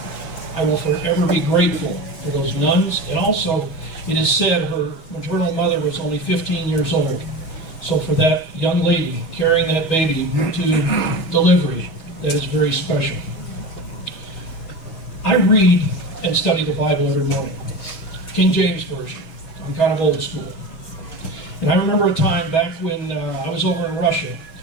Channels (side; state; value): right; late; 6.2 ms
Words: I will forever be grateful for those nuns, and also it is said her maternal mother was only 15 years old. So for that young lady carrying that baby to delivery, that is very special. I read and study the Bible every morning. King James Version. I'm kind of old school. And I remember a time back when I was over in Russia,